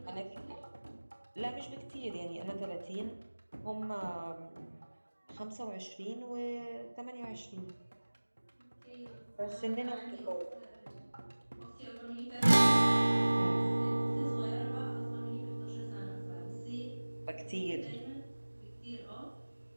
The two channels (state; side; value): inverted; both; correlation -1.00